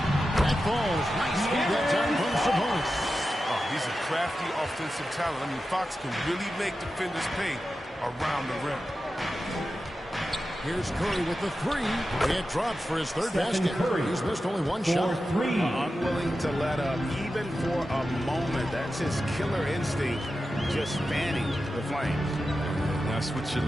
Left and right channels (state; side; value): normal; both; correlation 0.92